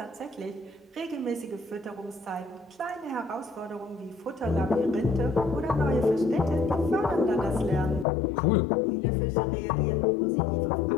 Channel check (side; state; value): right; drops out; at 8.1 s